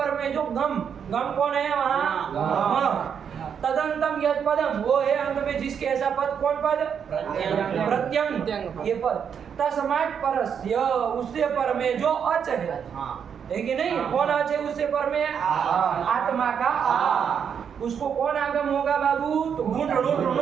में जो गम, गम कौन है वहाँ? तदंतम यद पदम, वो है अंत में जिसके ऐसा पद। कौन पद? प्रत्यंग, ये पद। तस्मात् परस्य, उससे पर में जो अच है कि नहीं? कौन अच है उससे पर में? आत्मा का आ। उसको कौन आगम होगा बाबू? तो घुट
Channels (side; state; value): left; quieter; 7.5 dB